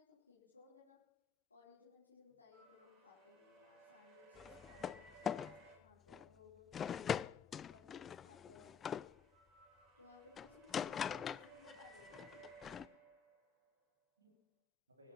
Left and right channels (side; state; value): right; quieter; 7.4 dB